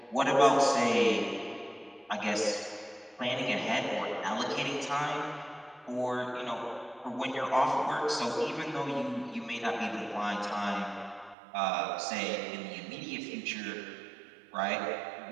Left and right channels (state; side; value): drops out; left; at 11.4 s